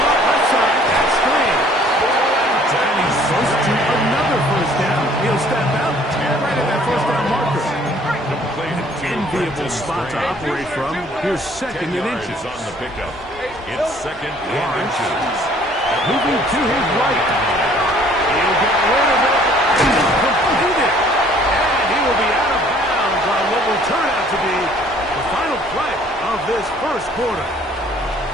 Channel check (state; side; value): normal; both; correlation 0.57